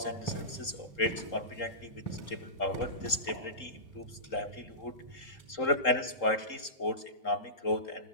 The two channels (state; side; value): late; right; 3.8 ms